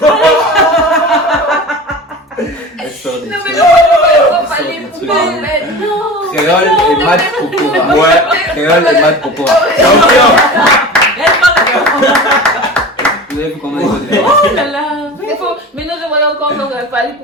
Non mais non, Fally Ipupa, mais non. Créole et Matt Pokora. Ouais, créole et Matt Pokora. Vous avez vu comment ils ont Oh là là. Mais non, je voyais encore donc Fally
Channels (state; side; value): normal; both; correlation 0.34